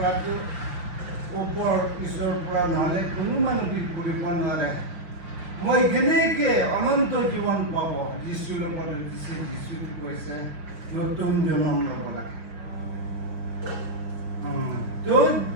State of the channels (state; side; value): late; left; 6.0 ms